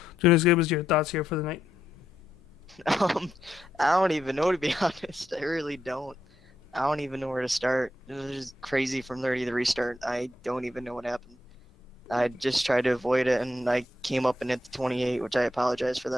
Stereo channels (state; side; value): normal; both; correlation 0.81